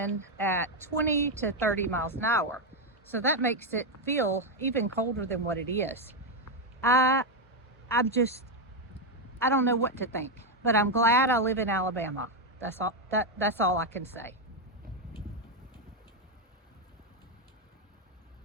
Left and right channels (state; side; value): normal; both; correlation 0.04